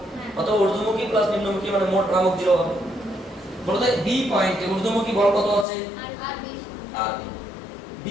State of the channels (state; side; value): drops out; right; at 5.7 s